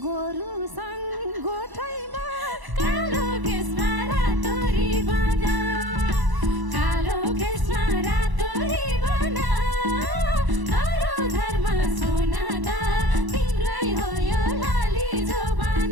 गोरुसँग गोठैमा कालो केसमा रातो रिबन कालो केसमा रातो रिबन धरो धर्म सुन त तिम्रै हो यो लाली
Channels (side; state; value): left; late; 1.0 ms